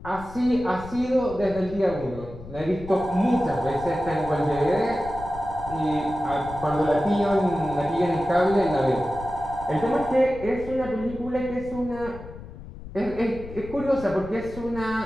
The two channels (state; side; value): noise; left; rumble, 14 dB below the sound